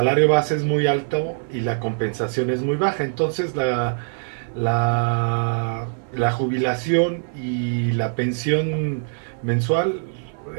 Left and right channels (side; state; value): left; silent; 63 dB below the other